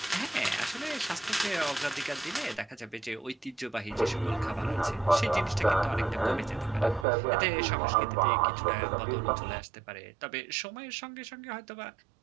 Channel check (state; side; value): drops out; left; at 7.1 s